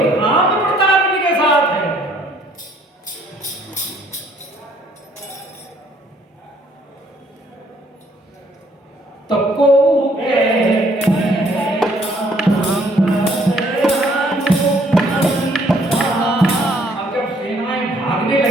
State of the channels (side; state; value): both; normal; correlation 0.64